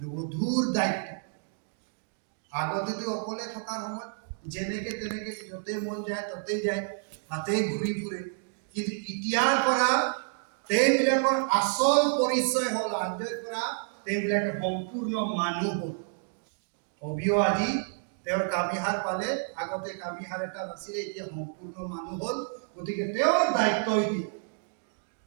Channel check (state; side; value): silent; left; 58 dB below the other